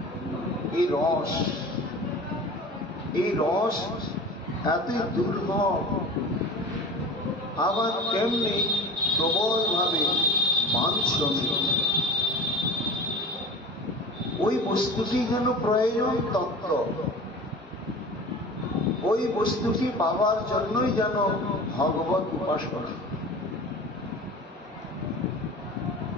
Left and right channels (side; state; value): both; normal; correlation 0.36